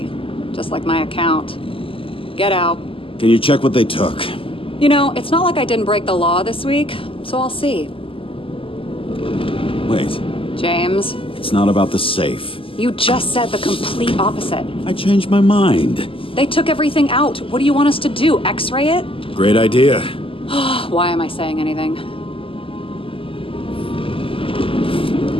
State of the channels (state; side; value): late; right; 0.26 ms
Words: Just like my account. Get out. Can you check what they took? You know, it's not like I didn't break the law this week, so I'll see. Wait. James. It's not about the safe. You just said the complete opposite. I changed my mind. They took everything out. What do you want us to do? X-ray it? Great idea. Why am I saying anything?